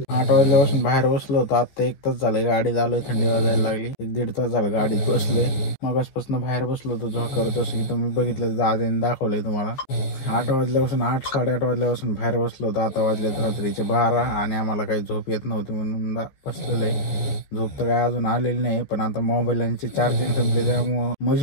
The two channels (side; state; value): right; late; 14 ms